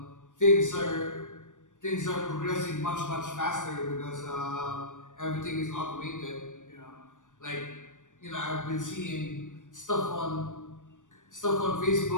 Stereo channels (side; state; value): right; late; 0.87 ms